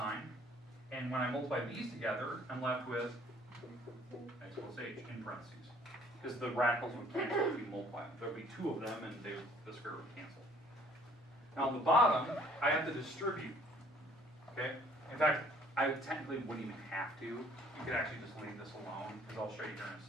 And when I multiply these together, I'm left with x plus h in parentheses. Because the radicals would cancel if you multiply them. There would be 2 of them, and the square root would cancel. Now on the bottom, I have to distribute. Okay? In fact, I technically wouldn't even have to. You could actually just leave this alone, because I'll show you here in a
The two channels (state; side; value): normal; both; correlation 0.58